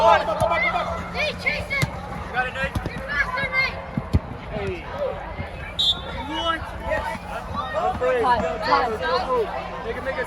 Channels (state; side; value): identical; both; correlation 1.00